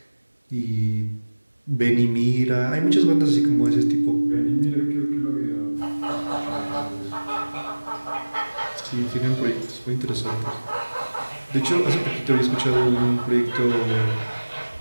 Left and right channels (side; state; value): both; inverted; correlation -1.00